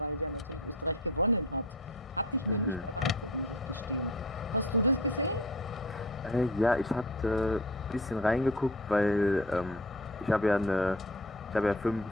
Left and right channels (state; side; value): normal; both; correlation 0.38